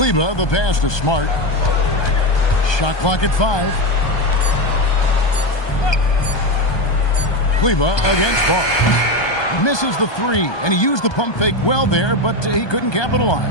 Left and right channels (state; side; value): late; right; 1.2 ms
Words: the pass to Smart. Shot clock at 5. Kleber against Barnes. Misses the 3, and he used the pump fake well there, but he couldn't